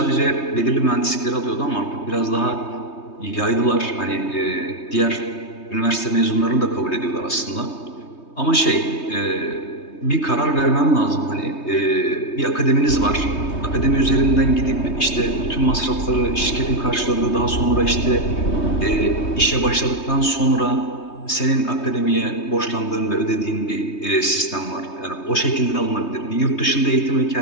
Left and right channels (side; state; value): right; late; 3.2 ms